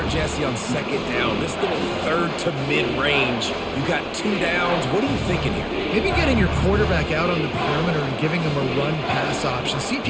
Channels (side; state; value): both; identical; correlation 1.00